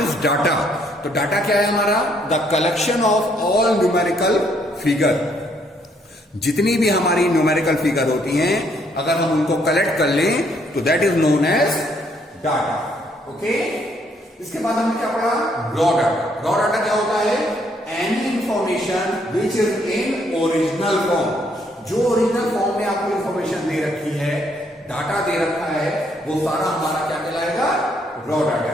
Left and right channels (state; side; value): normal; both; correlation 0.69